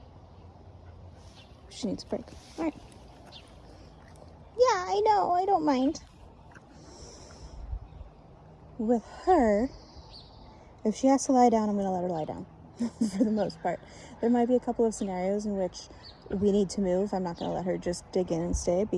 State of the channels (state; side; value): identical; both; correlation 1.00